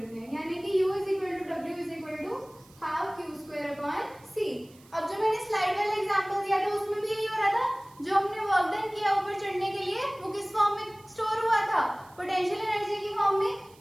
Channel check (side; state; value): right; noise; hiss, 27 dB below the sound